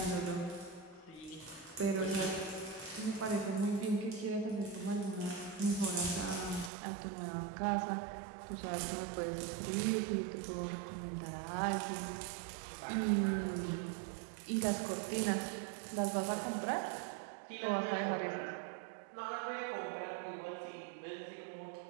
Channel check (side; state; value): left; drops out; at 6.7 s